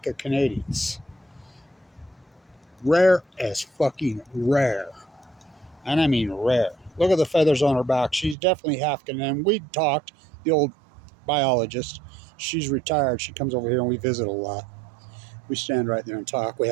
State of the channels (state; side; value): drops out; left; at 8.3 s